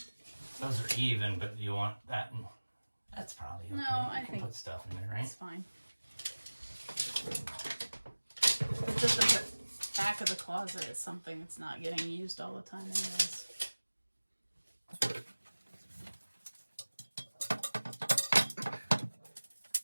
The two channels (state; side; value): inverted; both; correlation -1.00